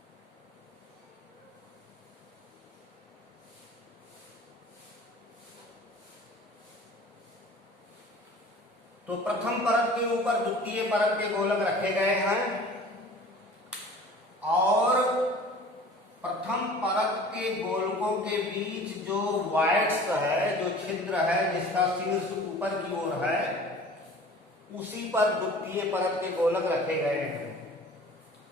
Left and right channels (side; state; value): both; normal; correlation 0.44